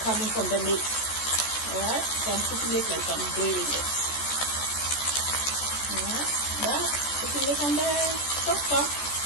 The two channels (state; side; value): late; right; 14 ms